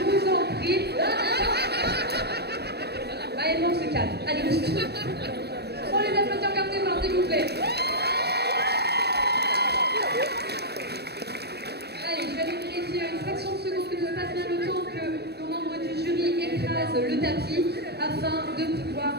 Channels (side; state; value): left; late; 0.47 ms